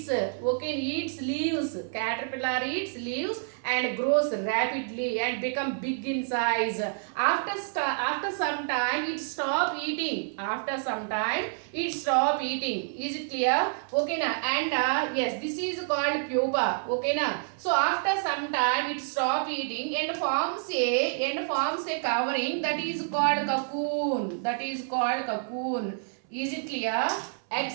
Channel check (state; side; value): silent; left; 59 dB below the other